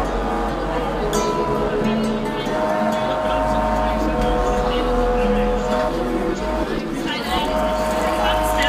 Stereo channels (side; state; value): both; identical; correlation 1.00